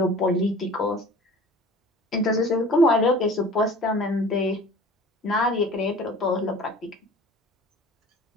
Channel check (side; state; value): both; normal; correlation 0.44